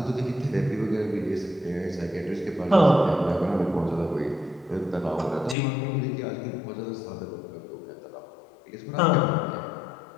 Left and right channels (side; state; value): right; drops out; at 5.6 s